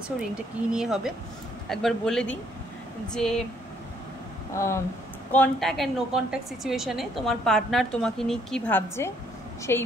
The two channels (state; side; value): normal; both; correlation 0.67